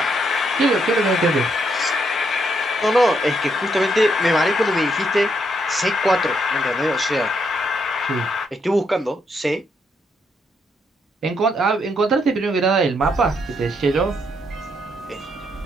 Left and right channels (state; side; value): normal; both; correlation 0.76